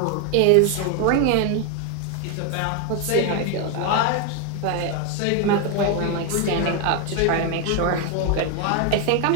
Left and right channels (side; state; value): both; different; correlation 0.01